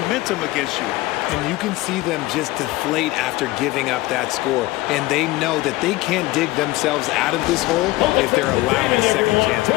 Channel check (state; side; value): quieter; right; 19.0 dB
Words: against you. And you can see them just deflate after giving up that score. And they know that they can't dig themselves out of this hole if they're allowing second chance